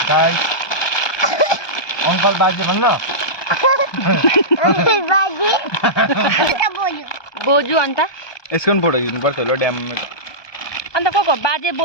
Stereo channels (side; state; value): right; late; 1.2 ms